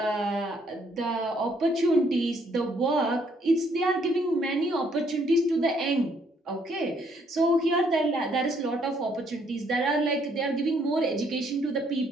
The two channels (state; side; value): normal; both; correlation 0.68